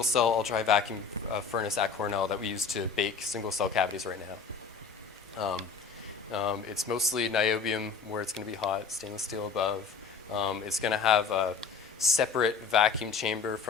ultra-high vacuum furnace at Cornell that we use to bake single-cell cavities right now. It's mostly niobium where it's going to be hot, stainless steel above. It's going to have a separate vacuum chamber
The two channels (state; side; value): quieter; right; 5.5 dB